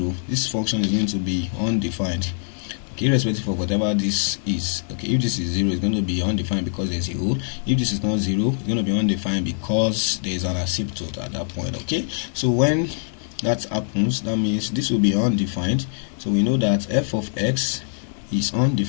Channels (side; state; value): right; silent; digital silence